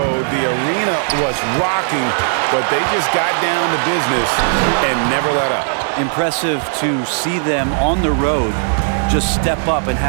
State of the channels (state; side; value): silent; left; 68 dB below the other